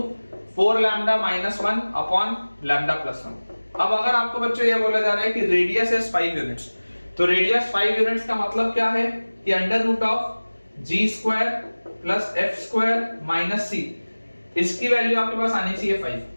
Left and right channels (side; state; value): both; inverted; correlation -1.00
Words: 4 लैम्डा - 1 अपॉन लैम्डा + 1। अब अगर आपको बच्चों ये बोला जा रहा है कि रेडियस इज 5 यूनिट्स, तो रेडियस 5 यूनिट्स का मतलब क्या है कि √g² + f² - c, इसकी वैल्यू आपके पास आनी चाहिए 5।